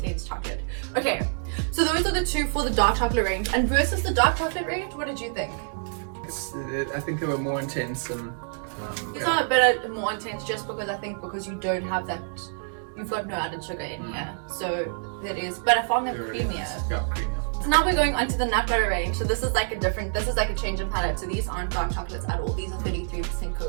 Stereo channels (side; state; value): left; silent; digital silence